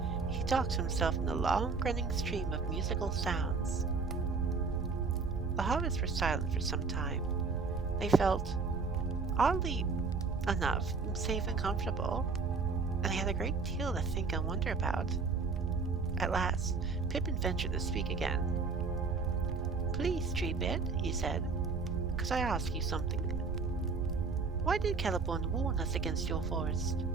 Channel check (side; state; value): left; quieter; 4.6 dB